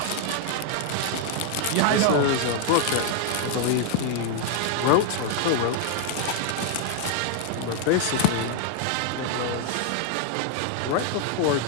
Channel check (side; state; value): both; different; correlation 0.00